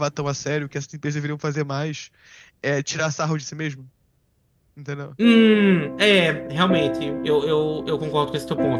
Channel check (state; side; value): identical; both; correlation 1.00